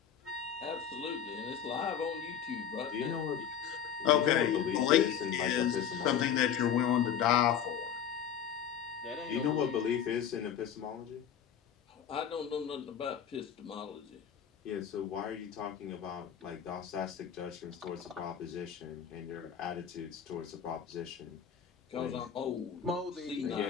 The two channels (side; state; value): right; quieter; 8.6 dB